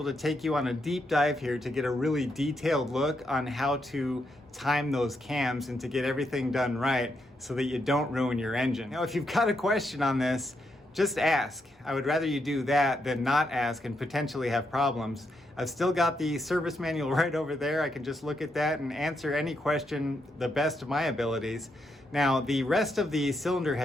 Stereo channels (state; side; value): normal; both; correlation 0.80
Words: to take you on a deep dive here to get a really detailed look on how to time those cams and to get everything done right so that you don't ruin your engine. Now, if you've got a question on this, just ask. I would rather you do that than not ask and potentially have problems. I've still got the service manual right over there. I can just look at that and answer any question the best of my abilities. Now, the rest of the cylinder